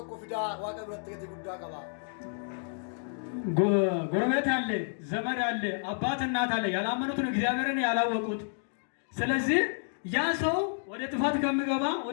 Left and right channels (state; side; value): silent; right; digital silence